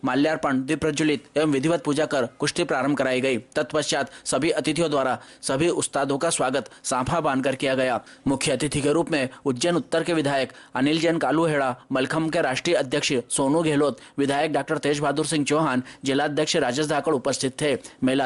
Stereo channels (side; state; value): both; identical; correlation 1.00